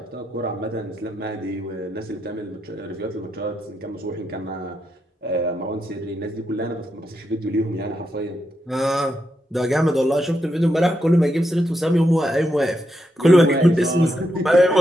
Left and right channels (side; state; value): both; normal; correlation 0.83